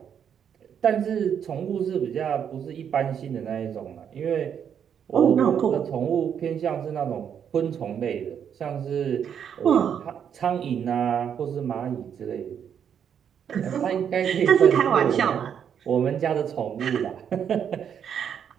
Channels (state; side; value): quieter; left; 8.2 dB